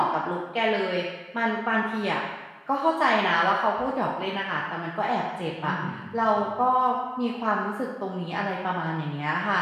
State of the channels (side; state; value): both; identical; correlation 1.00